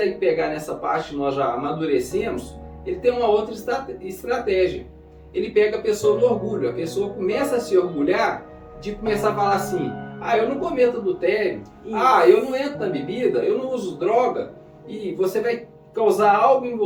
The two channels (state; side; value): identical; both; correlation 1.00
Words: pegar nessa parte, nós já amadurecemos, ele tem uma outra estratégia. Ele pega a pessoa no orgulho. A pessoa começa a se orgulhar de começar a falar assim: eu não cometo adultério, eu não entro na bebida, eu não uso droga. E você vai causar algo em